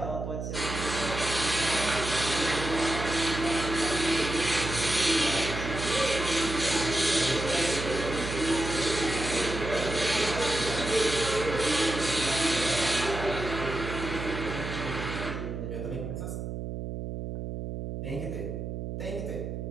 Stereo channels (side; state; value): right; noise; hum, 5 dB below the sound